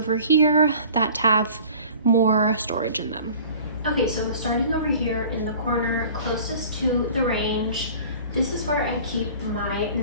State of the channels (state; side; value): inverted; both; correlation -0.45